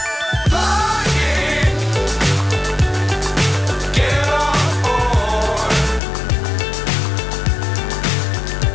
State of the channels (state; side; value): drops out; right; at 6.0 s